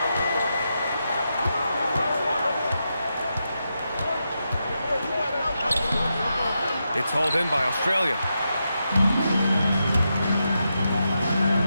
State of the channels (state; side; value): inverted; both; correlation -0.86